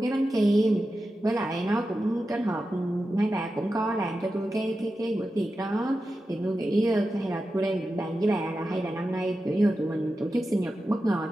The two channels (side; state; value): both; normal; correlation 0.91